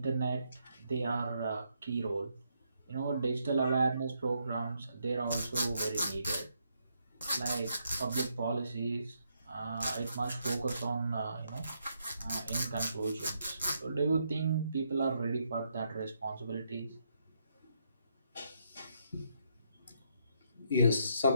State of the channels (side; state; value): both; inverted; correlation -0.76